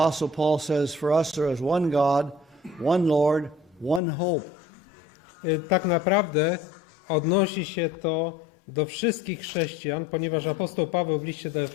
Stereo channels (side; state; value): right; drops out; at 4.0 s